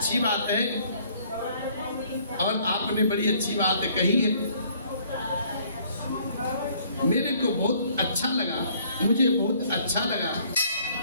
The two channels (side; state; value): both; inverted; correlation -0.61